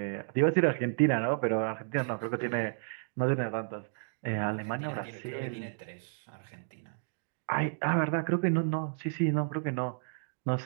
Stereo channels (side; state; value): left; silent; digital silence